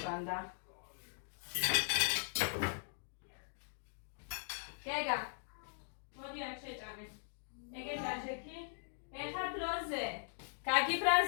გეგა, მოდი აქ შეჭამე. ეგეთ აჟექი, ეხა დროზე.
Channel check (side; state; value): right; silent; digital silence